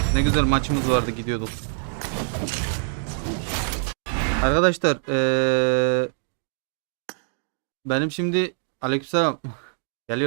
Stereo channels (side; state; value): left; silent; digital silence